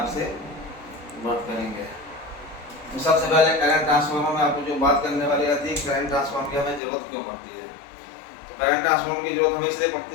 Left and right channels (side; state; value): right; drops out; at 6.8 s